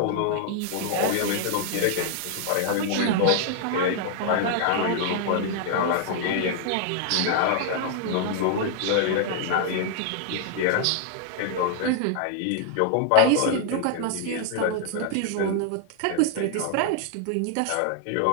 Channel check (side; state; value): both; different; correlation 0.00